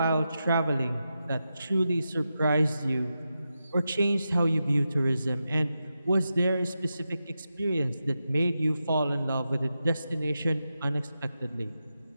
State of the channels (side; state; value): both; inverted; correlation -0.89